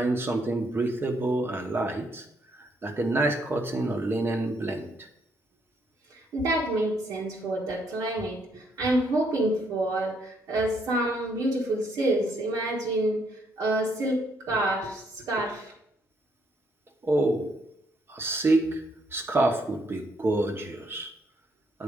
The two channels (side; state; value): both; normal; correlation 0.72